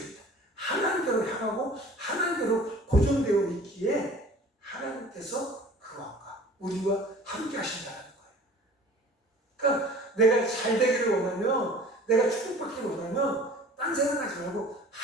하나님께로 향하고 하나님께로 고정되어 있기에 하나님께서 그 왕과 우리와 함께 하신다는 거예요. 그러니까 내가 잘 되기를 원하면, 내가 축복받기를 원하면 딴 생각하지 말고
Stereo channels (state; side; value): normal; both; correlation 0.46